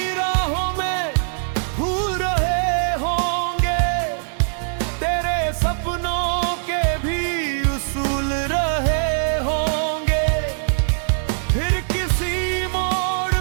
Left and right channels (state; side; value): silent; left; 65 dB below the other